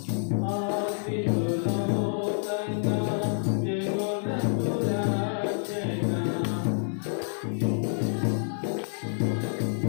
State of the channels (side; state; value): right; silent; 59 dB below the other